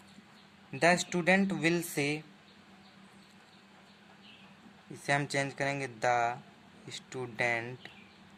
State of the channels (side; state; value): both; identical; correlation 1.00